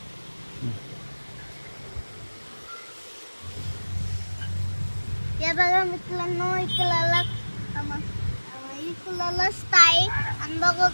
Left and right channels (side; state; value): both; inverted; correlation -1.00